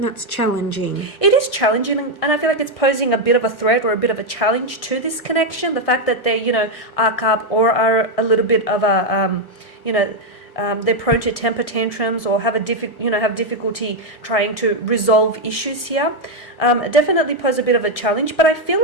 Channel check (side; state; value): right; late; 1.6 ms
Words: challenging. It is challenging, and I feel like it's posing a bit of a threat or a bit of a challenge to this connection. The fact that they, arc up or are a little bit of a, they're prone to temper tantrums or have difficulty trying to resolve issues here. Definitely pose a bit of a challenge, but I feel